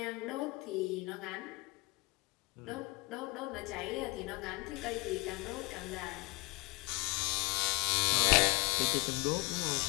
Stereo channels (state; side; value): quieter; right; 25.7 dB